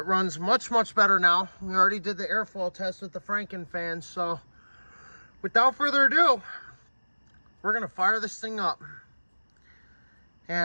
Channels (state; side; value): inverted; both; correlation -1.00